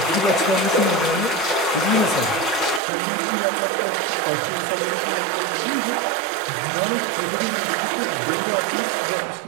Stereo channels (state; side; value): drops out; left; at 2.8 s